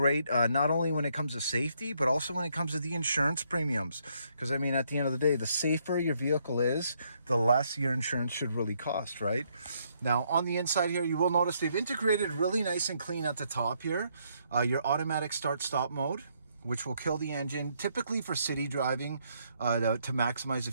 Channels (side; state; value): both; inverted; correlation -0.72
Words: Not only when it comes to safety, but also when it comes to the insurance premiums. Because I mean, at the end of the day, the safer your vehicle is, the less your insurance should really cost, right? Now on the inside here, you will notice they've integrated really nice and clean at the top here. Your automatic start-stop mode, which will kill the engine, typically for city driving, to maximize the